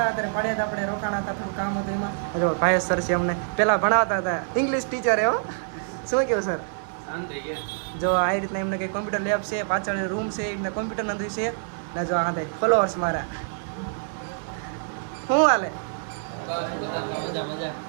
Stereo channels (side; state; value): left; silent; 61 dB below the other